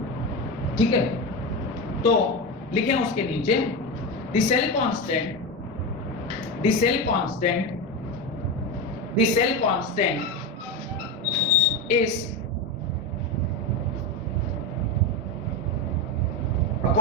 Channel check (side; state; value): both; normal; correlation 0.16